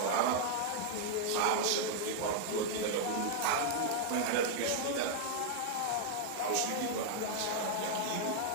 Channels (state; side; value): different; both; correlation 0.00